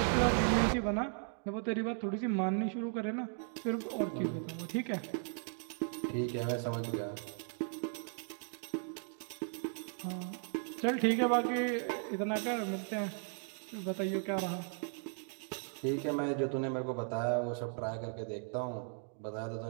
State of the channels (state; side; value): silent; left; 53 dB below the other